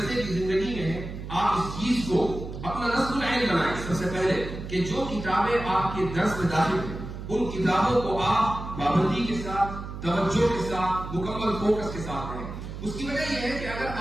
کی زندگی میں ہیں، آپ اس چیز کو اپنا نصب العین بنائیں۔ سب سے پہلے کہ جو کتابیں آپ کے درس میں داخل ہیں ان کتابوں کو آپ پابندی کے ساتھ، توجہ کے ساتھ، مکمل فوکس کے ساتھ پڑھیں۔ اس کی وجہ یہ ہے کہ اگر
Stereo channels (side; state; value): right; noise; hum, 9 dB below the sound